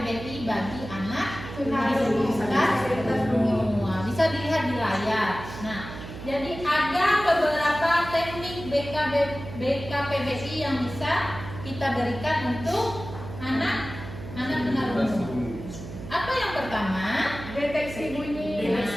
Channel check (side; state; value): right; noise; hum, 11 dB below the sound